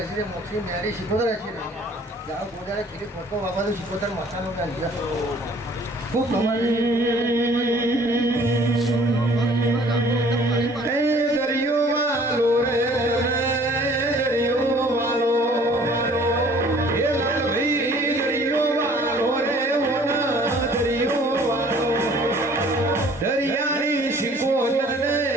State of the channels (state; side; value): normal; both; correlation 0.54